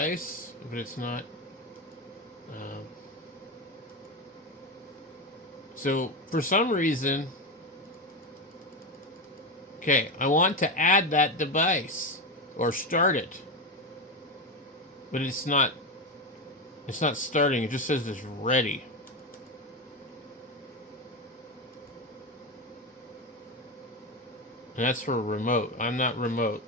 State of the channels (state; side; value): normal; both; correlation 0.16